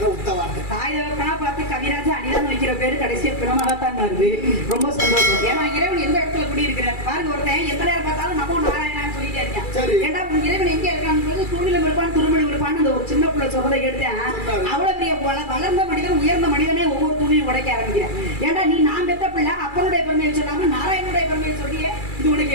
உத்தவார்த்தை. தாயவர்களா பார்த்து கவிராஜ அனிதான் வைக்கிற பேரு கடைசியா பிணமாகத்தான் வருது. ரொம்ப சந்தோஷம். ஏன்னா இறைவன் எந்த இடத்துல குடி இருக்கிறார் பாருங்க. ஒருத்தன் எந்த நேரம் பார்த்தாலும் நமோ நாராயணான்னு சொல்லிட்டே இருக்கேன். ஏன்னா இறைவன் எங்க இருக்கான்னு தூணிலும் இருப்பான் துருமலும் இருப்பான்னு அந்த ஒரு சின்ன பிள்ளை சொல்றதை எடுத்தேன். அவ்வளவு பெரிய வளர்ந்த மனிதன் உயர்ந்த மனிதனே ஒவ்வொரு துணியும் உடைக்க ஆரம்பிக்கிறேன். ஏன்னா நீ நான் பெத்த பிள்ளை அப்பனுடைய பெருமையை சொல்லாம நாராயணனுடைய பெருமையை சொல்லியே இது உனக்கு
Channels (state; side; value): late; right; 2.3 ms